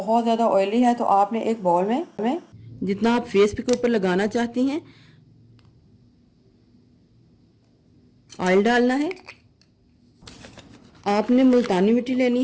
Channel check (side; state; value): both; identical; correlation 1.00